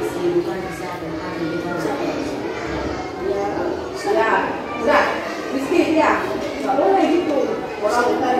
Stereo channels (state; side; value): identical; both; correlation 1.00